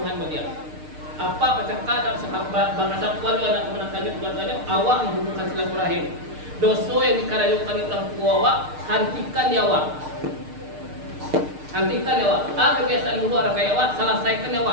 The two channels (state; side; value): late; left; 6.6 ms